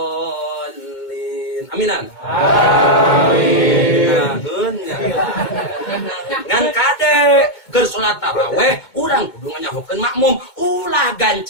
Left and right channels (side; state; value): right; late; 2.2 ms